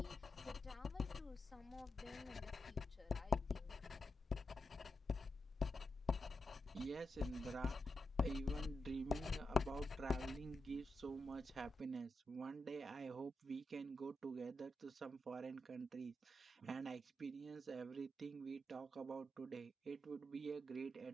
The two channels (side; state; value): both; normal; correlation 0.87